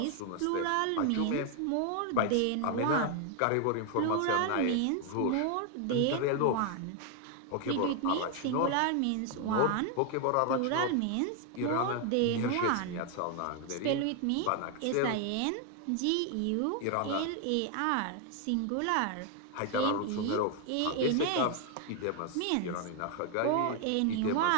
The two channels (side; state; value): both; different; correlation 0.01